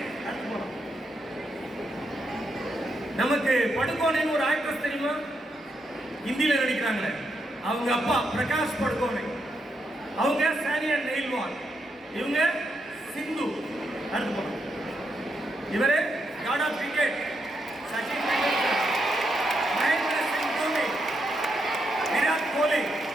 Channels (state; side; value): normal; both; correlation 0.81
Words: நமக்கு படுகோனைன்னு ஒரு ஆக்ட்ரஸ் தெரியுமா? ஹிந்தியில நடிக்கிறாங்களே, அவங்க அப்பா பிரகாஷ் படுகோனை. அவங்க சானியா நெய்ல்வால். இவங்க சிந்து. அடுத்து போறோம். இவரு God of cricket Sachin Tendulkar, Mahendra Singh Dhoni, Virat Kohli.